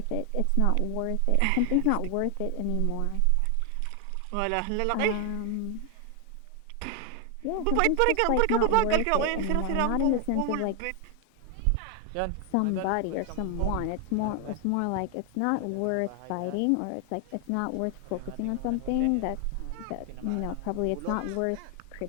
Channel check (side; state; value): both; different; correlation 0.00